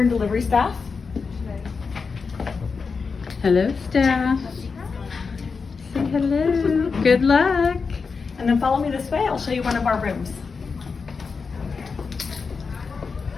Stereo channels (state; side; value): quieter; right; 5.0 dB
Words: delivery staff. Hello, staff. Say hello. Good luck. And then follow me this way. I'll show you one of our rooms.